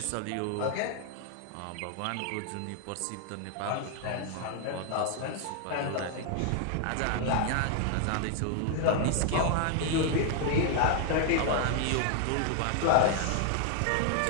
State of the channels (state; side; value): different; both; correlation 0.00